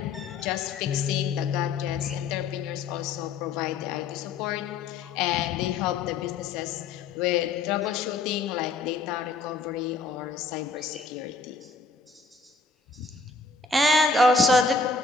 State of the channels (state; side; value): quieter; right; 4.1 dB